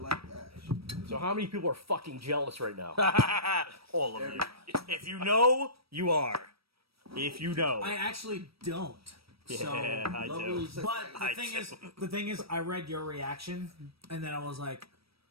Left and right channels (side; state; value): left; late; 0.76 ms